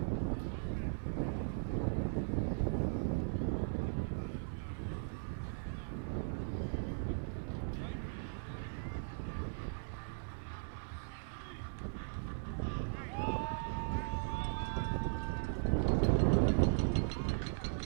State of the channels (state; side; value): silent; left; 52 dB below the other